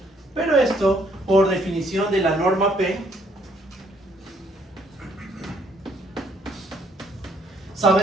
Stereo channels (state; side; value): normal; both; correlation 0.67